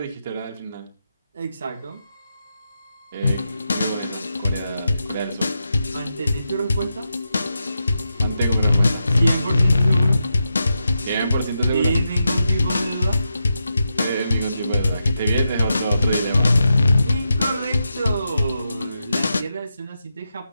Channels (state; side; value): inverted; both; correlation -0.87